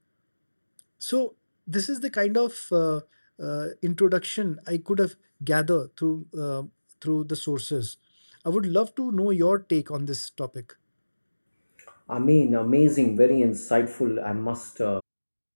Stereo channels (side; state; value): both; inverted; correlation -1.00